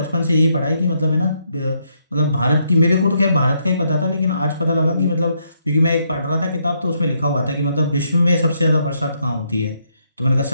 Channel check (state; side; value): inverted; both; correlation -0.76